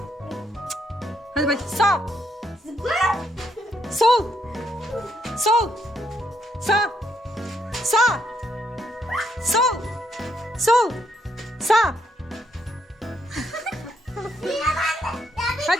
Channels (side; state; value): both; normal; correlation 0.75